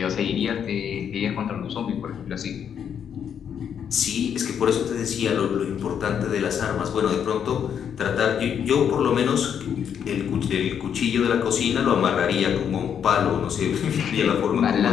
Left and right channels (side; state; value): right; quieter; 8.2 dB